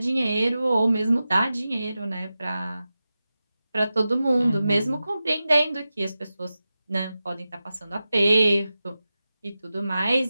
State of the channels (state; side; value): inverted; both; correlation -0.93